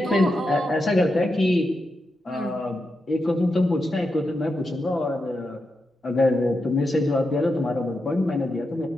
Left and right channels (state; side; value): normal; both; correlation 0.87